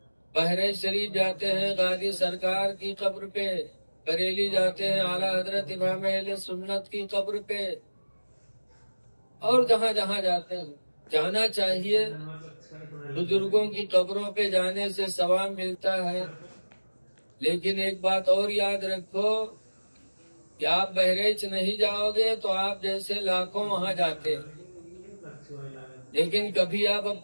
بحرین شریف جاتے ہیں غازی سرکار کی قبر پہ، بریلی جاتے ہیں اعلیٰ حضرت امام اہل سنت کی قبر پہ، اور جہاں جہاں جاتے ہیں جانا چاہیے۔ بزرگوں کی قبروں پہ جانے سے ثواب ملتا ہے، لیکن ایک بات اور یاد رکھو کہ آپ بہریچ نہیں جاؤ گے تو آپ جیسے لاکھوں وہاں جاتے ہیں، لیکن کبھی آپ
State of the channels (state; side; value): inverted; both; correlation -1.00